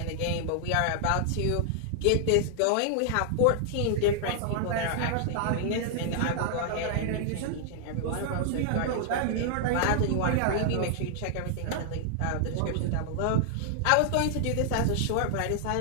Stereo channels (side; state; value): both; different; correlation -0.01